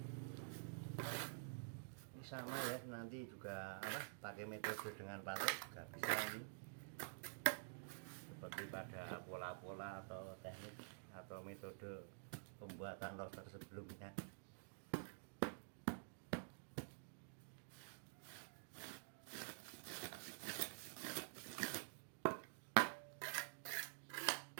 Ini sama ya, nanti juga pakai metode dengan patok juga bisa ini. Seperti pada pola-pola atau teknik atau metode pembuatan roster sebelumnya.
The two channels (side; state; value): left; silent; digital silence